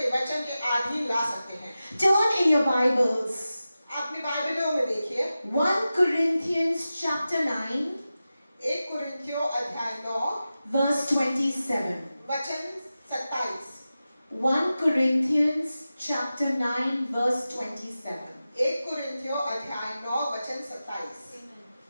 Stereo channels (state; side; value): inverted; both; correlation -0.94